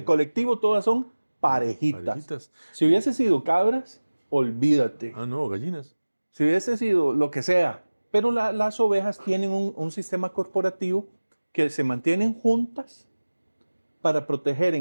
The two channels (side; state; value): both; inverted; correlation -1.00